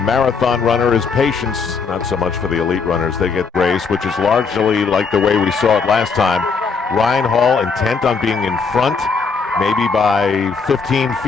runner is patience. Not so much for the elite runners. They get race, which is largely like the way we saw it last time. Ryan Hall intent on being in front, maybe by 15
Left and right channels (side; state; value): right; quieter; 5.2 dB